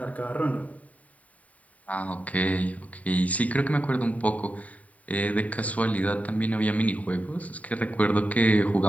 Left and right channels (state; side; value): late; right; 0.069 ms